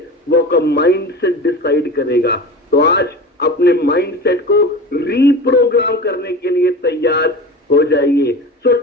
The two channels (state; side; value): normal; both; correlation 0.32